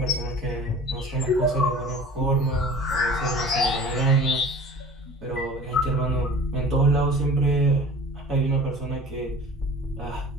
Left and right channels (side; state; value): both; normal; correlation 0.42